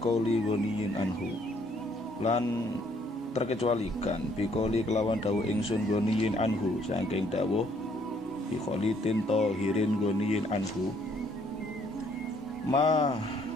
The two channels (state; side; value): normal; both; correlation 0.66